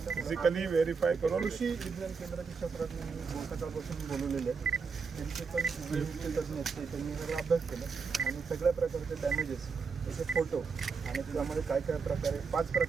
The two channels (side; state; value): left; quieter; 5.2 dB